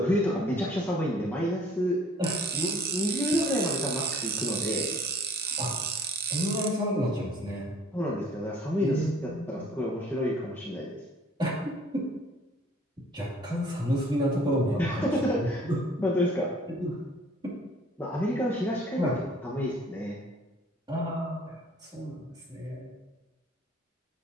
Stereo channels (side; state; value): both; normal; correlation 0.54